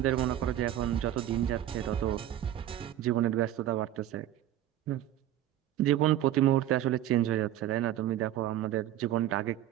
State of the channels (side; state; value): left; quieter; 12.6 dB